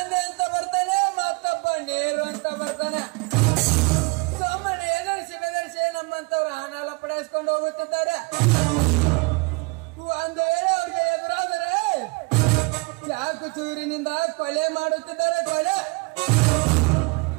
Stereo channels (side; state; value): left; quieter; 28.9 dB